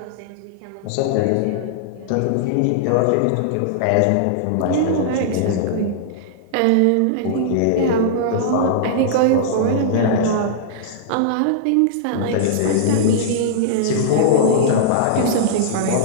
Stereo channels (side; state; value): both; different; correlation -0.02